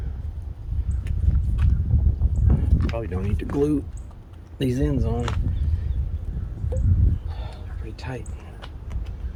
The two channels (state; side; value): identical; both; correlation 1.00